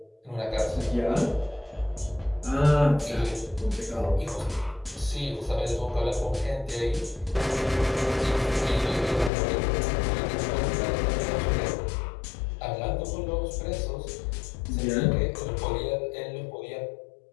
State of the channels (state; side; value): drops out; right; at 9.3 s